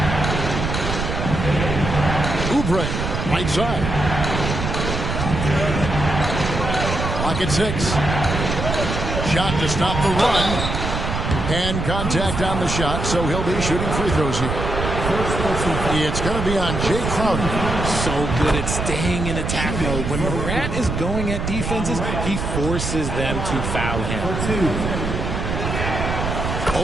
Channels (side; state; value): right; noise; rumble, 3 dB below the sound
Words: Oubre, right side. Clock at 6. Shot to stop the run. Hand contact on the shot, so he'll be shooting free throws here. It's going to be on Jay Crowder. So good at staying in attack mode. When Morant is going at defenses, he forces them to foul him.